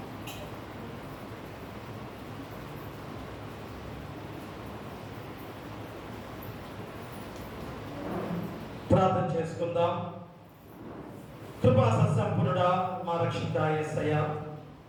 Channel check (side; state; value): both; identical; correlation 1.00